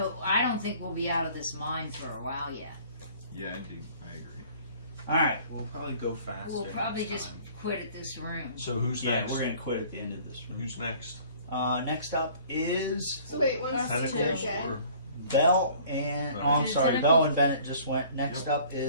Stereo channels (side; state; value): both; inverted; correlation -0.52